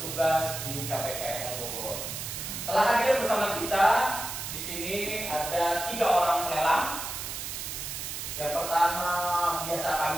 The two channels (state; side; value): noise; right; hiss, 6 dB below the sound